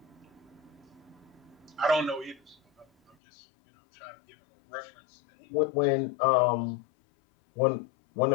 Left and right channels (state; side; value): drops out; right; at 3.2 s